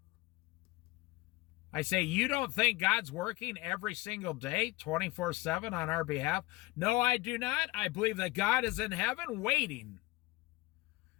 I say, you don't think God's working every single day, 24/7 on our behalf? No, I do not. I believe that God is in heaven waiting.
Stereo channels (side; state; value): right; quieter; 20.9 dB